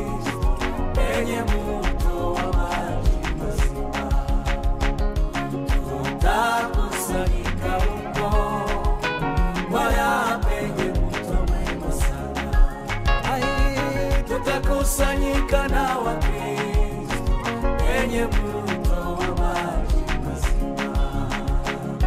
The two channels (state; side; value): identical; both; correlation 1.00